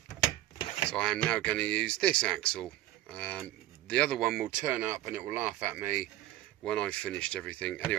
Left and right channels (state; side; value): quieter; left; 14.8 dB